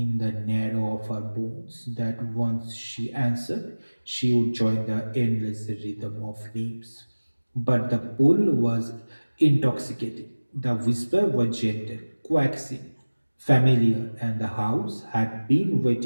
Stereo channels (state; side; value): inverted; both; correlation -1.00